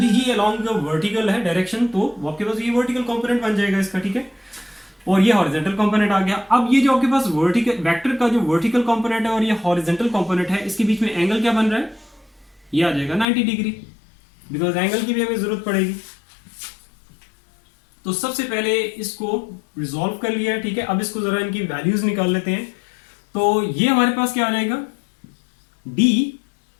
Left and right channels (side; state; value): right; drops out; at 13.2 s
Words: ही अलोंग वर्टिकल है डायरेक्शन, तो आपके पास ये वर्टिकल कंपोनेंट बन जाएगा इसका, ठीक है, और ये हॉरिजेंटल कंपोनेंट आ गया। अब ये जो आपके पास वर्टिकल वेक्टर का जो वर्टिकल कंपोनेंट है और ये हॉरिजेंटल कंपोनेंट है, इसके बीच में एंगल क्या बन रहा है, ये आ जाएगा 90 डिग्री, बिकॉज एंगल की भी हमें जरूरत पड़ेगी। तो सबसे पहले इसको रिजॉल्व कर लिया है, ठीक है। अब इसको जरा इनकी वैल्यूज निकाल लेते हैं। तो ये हमारे पास क्या आ जाएगा,